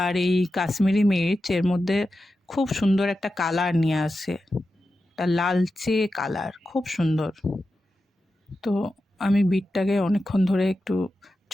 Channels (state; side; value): normal; both; correlation 0.91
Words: আর এই কাশ্মীরি মির্চ এর মধ্যে খুব সুন্দর একটা কালার নিয়ে আসে, একটা লালচে কালার, খুব সুন্দর। তো আমি বিটটাকে অনেকক্ষণ ধরে একটু